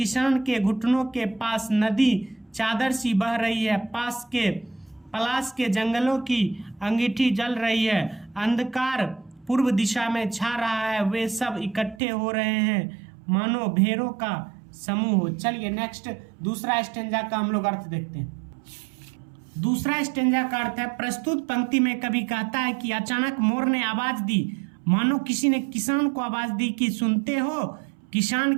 के घुटनों के पास नदी चादर सी बह रही है, पास के पलाश के जंगलों की अंगीठी जल रही है, अंधकार पूर्व दिशा में छा रहा है, वे सब इकट्ठे हो रहे हैं मानो भेड़ों का समूह। चलिए नेक्स्ट दूसरा स्टेंजा का हम लोग अर्थ देखते हैं। दूसरा स्टेंजा का अर्थ है, प्रस्तुत पंक्ति में कवि कहता है कि अचानक मोर ने आवाज दी, मानो किसी ने किसान को आवाज दी कि सुनते हो। किसान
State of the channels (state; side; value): drops out; left; at 12.0 s